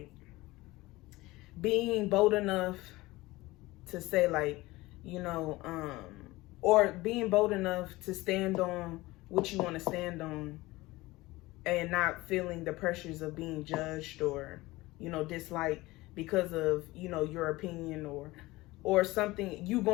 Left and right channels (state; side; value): quieter; right; 20.0 dB